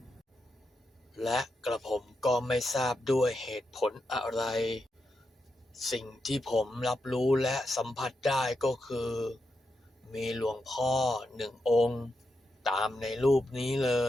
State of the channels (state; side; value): normal; both; correlation 0.86